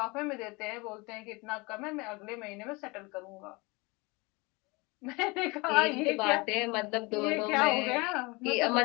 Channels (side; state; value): right; quieter; 25.9 dB